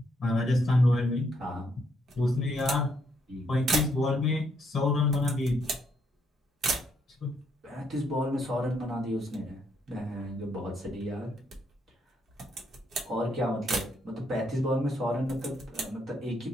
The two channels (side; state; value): both; normal; correlation 0.74